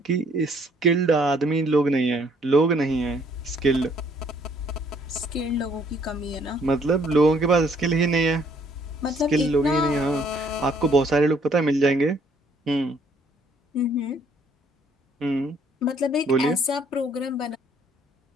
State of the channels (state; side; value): normal; both; correlation 0.63